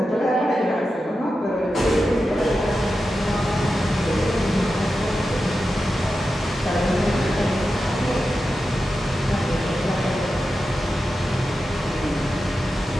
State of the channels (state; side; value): normal; both; correlation 0.91